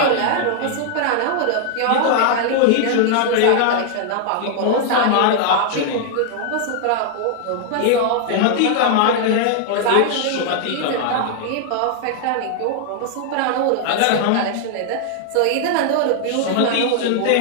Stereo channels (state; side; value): different; both; correlation 0.00